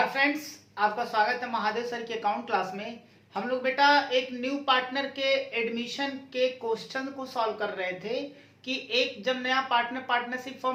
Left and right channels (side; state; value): both; identical; correlation 1.00